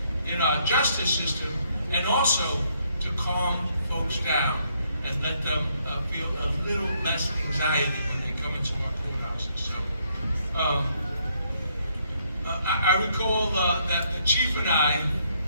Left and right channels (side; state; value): both; inverted; correlation -0.71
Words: in our justice system, and also to calm folks down and let them feel a little less anxiety when they come into our courthouses. So I recall that the chief and I